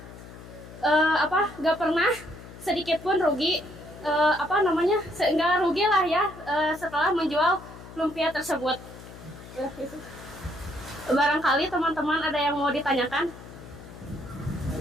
gak pernah sedikit pun rugi, nggak rugi lah ya setelah menjual lumpia tersebut. Barangkali teman-teman ada yang mau ditanyakan?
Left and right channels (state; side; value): noise; left; hum, 16 dB below the sound